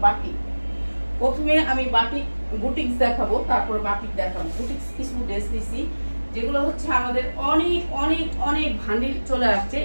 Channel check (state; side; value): inverted; both; correlation -1.00